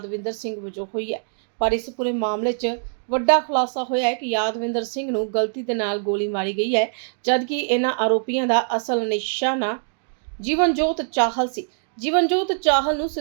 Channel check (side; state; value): left; silent; digital silence